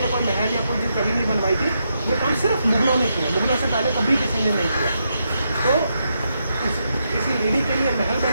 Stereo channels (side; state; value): both; inverted; correlation -0.82